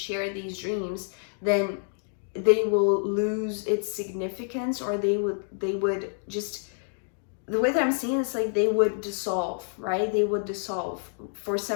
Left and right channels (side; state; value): right; silent; digital silence